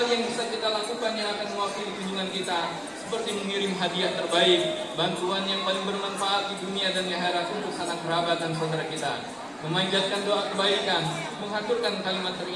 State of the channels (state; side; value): identical; both; correlation 1.00